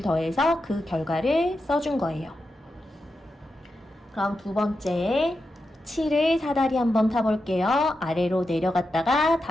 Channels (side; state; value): both; normal; correlation 0.88